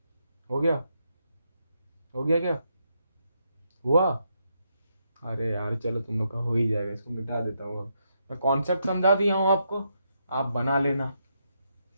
हो गया? हो गया क्या? हुआ? अरे यार चलो, तुम लोग का हो ही जाएगा, इसको मिटा देता हूँ अब। मैं कॉन्सेप्ट समझा दिया हूँ आपको, आप बना लेना।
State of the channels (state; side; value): inverted; both; correlation -0.80